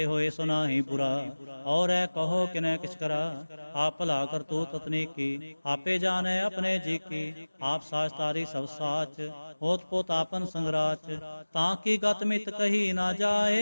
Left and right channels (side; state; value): both; inverted; correlation -1.00